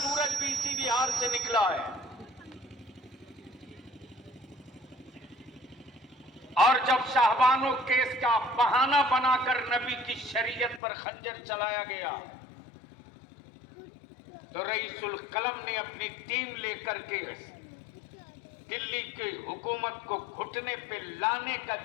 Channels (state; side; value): drops out; right; at 10.8 s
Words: भी इसी बिहार से निकला है। और जब शाहबानो केस का बहाना बनाकर नबी की शरीयत पर खंजर चलाया गया तो रईसुल कलम ने अपनी टीम लेकर के दिल्ली की हुकूमत को घुटने पे लाने का